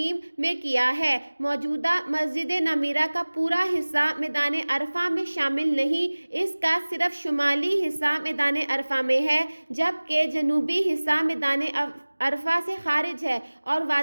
میں کیا ہے۔ موجودہ مسجد نمیرہ کا پورا حصہ میدان عرفہ میں شامل نہیں، اس کا صرف شمالی حصہ میدان عرفہ میں ہے جبکہ جنوبی حصہ میدان عرفہ سے خارج ہے اور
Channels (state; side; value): inverted; both; correlation -1.00